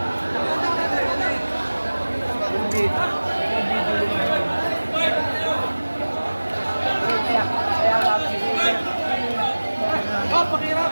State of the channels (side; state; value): both; inverted; correlation -1.00